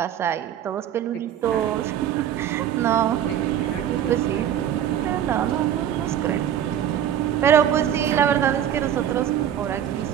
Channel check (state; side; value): quieter; left; 10.2 dB